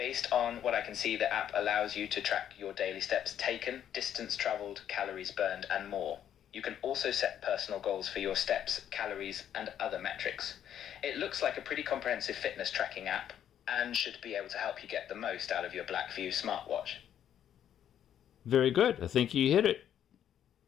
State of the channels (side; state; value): right; quieter; 10.0 dB